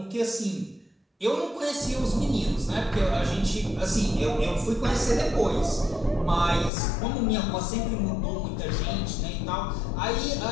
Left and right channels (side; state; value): right; drops out; at 6.7 s